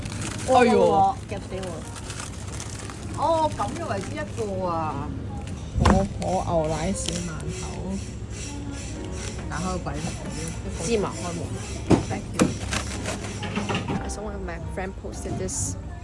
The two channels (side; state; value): both; identical; correlation 1.00